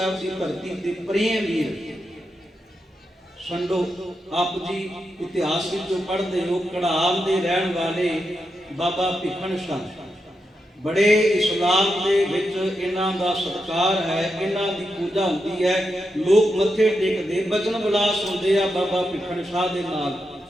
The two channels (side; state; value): both; normal; correlation 0.86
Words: ਦੀ ਧਰਤੀ ਤੇ ਪ੍ਰੇਮ ਵੀਰ। ਸੰਡੋ ਆਪ ਜੀ ਇਤਿਹਾਸ ਵਿੱਚੋਂ ਪੜ੍ਹਦੇ ਹੋ, ਕੜਾਮ ਦੇ ਰਹਿਣ ਵਾਲੇ ਬਾਬਾ ਭਿੱਖਣ ਸ਼ਾਹ, ਬੜੇ ਇਸਲਾਮ ਦੇ ਵਿੱਚ ਇਹਨਾਂ ਦਾ ਸਤਿਕਾਰ ਹੈ, ਇਹਨਾਂ ਦੀ ਪੂਜਾ ਹੁੰਦੀ ਹੈ, ਲੋਕ ਮੱਥੇ ਟੇਕਦੇ, ਬਚਨ ਵਿਲਾਸ ਹੁੰਦੇ ਆ ਬਾਬਾ ਭਿੱਖਣ ਸ਼ਾਹ ਦੇ ਨਾਲ।